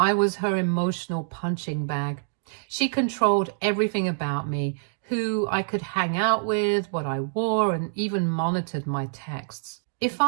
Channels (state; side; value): silent; left; digital silence